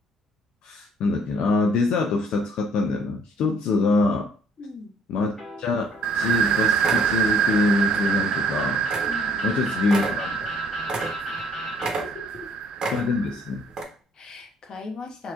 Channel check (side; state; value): both; normal; correlation 0.60